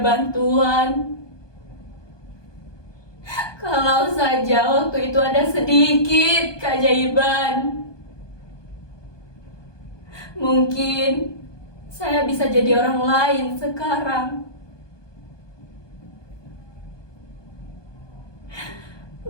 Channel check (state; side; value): late; right; 1.2 ms